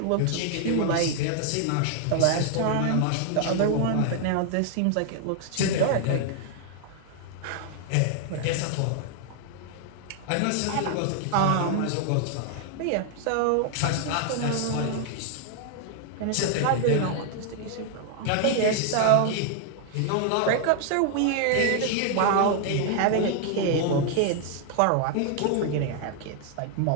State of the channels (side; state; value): both; different; correlation 0.00